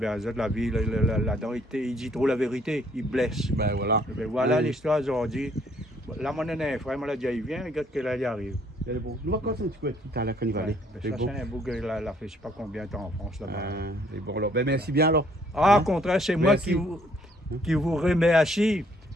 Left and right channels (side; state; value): both; normal; correlation 0.64